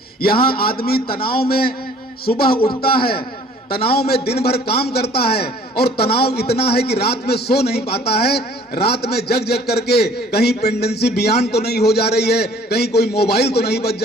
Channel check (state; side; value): normal; both; correlation 0.54